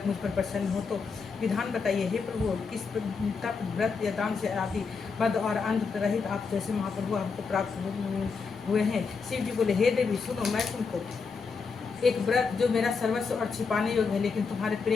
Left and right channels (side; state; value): right; quieter; 5.1 dB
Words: मुझ पर प्रसन्न हो तो विधान बताइए। हे प्रभु, किस तप व्रत या दान से आदि मद और अंध रहित आप जैसे महाप्रभु हमको प्राप्त हुए हैं। शिव जी बोले, हे देवी सुनो, मैं तुमको एक व्रत जो मेरा सर्वस्व और छिपाने योग्य है लेकिन तुम्हारे